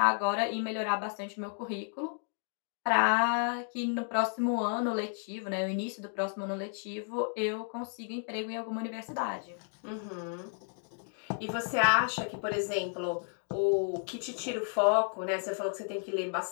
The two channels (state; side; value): silent; right; 55 dB below the other